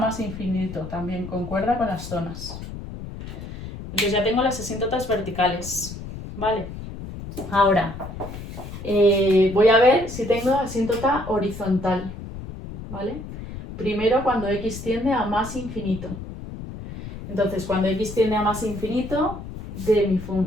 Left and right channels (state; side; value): noise; left; rumble, 10 dB below the sound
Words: infinito, también concuerda con las zonas. Entonces ya tengo las asíntotas verticales, ¿vale? Ahora, voy a ver si tengo asíntota horizontal, ¿vale? Primero cuando x tiende a más infinito. Entonces, cuando x tiende a más infinito, de mi